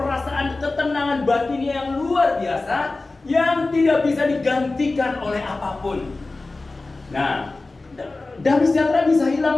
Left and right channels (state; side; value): quieter; right; 3.3 dB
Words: ketenangan batin yang luar biasa, yang tidak bisa digantikan oleh apapun. Nah, damai sejahtera bisa